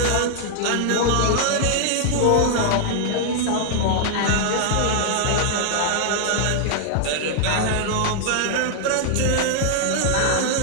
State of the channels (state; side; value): different; both; correlation -0.01